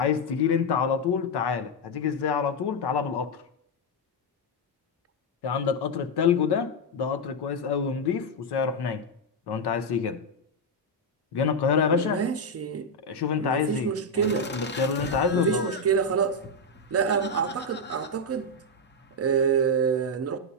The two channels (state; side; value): normal; both; correlation 0.02